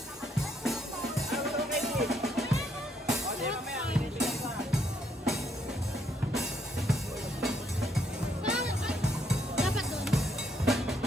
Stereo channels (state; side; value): normal; both; correlation 0.72